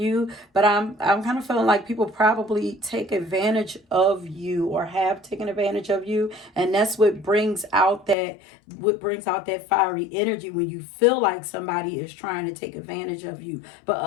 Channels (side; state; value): right; drops out; at 8.2 s